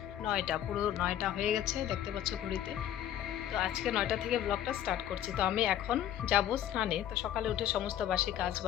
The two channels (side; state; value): right; quieter; 11.2 dB